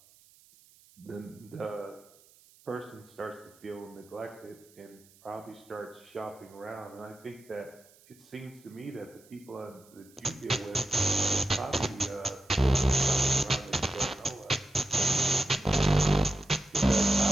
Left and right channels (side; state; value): right; noise; hiss, 27 dB below the sound